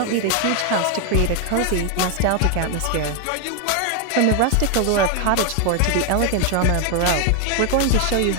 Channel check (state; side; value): different; both; correlation 0.01